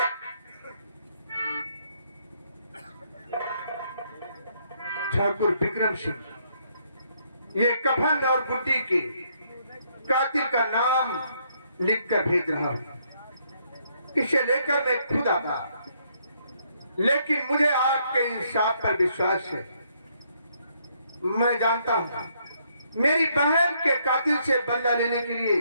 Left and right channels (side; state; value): both; inverted; correlation -0.71